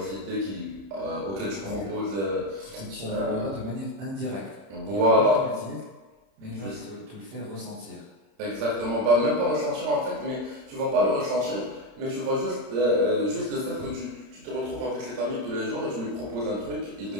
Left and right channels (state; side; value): late; left; 31 ms